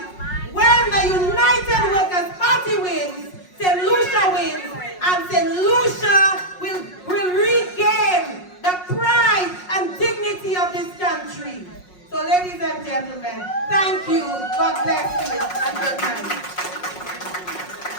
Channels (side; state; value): right; late; 5.5 ms